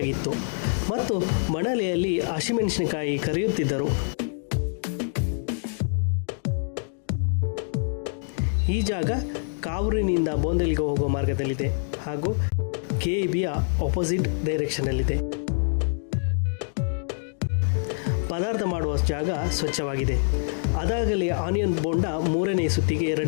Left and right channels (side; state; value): right; silent; digital silence